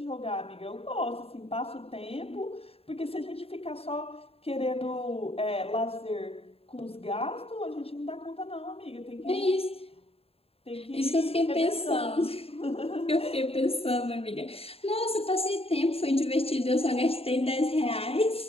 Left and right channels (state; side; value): late; right; 0.28 ms